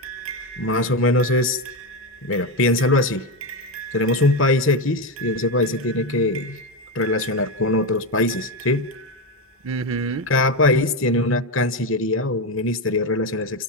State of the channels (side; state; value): both; normal; correlation 0.12